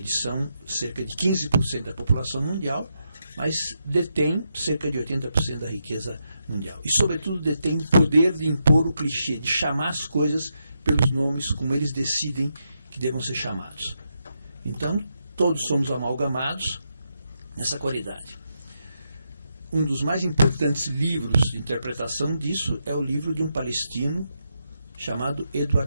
são cerca de 15% da população mundial, mas detêm cerca de 80% da riqueza mundial. E, sobretudo, detêm o poder de impor o clichê, de chamar as coisas pelos nomes como eles decidem que devam ser chamados. Então, todos somos amalgamados nessa qualidade. Um dos mais importantes livros de interpretação disso é o livro de um palestino chamado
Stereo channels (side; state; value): both; inverted; correlation -0.83